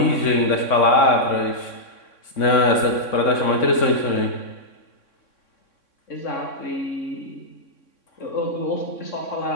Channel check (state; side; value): late; right; 3.6 ms